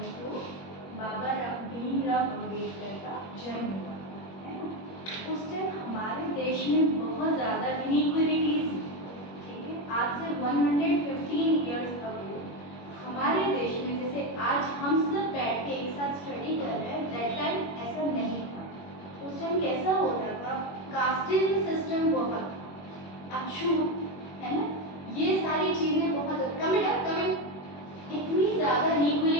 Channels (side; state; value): right; late; 21 ms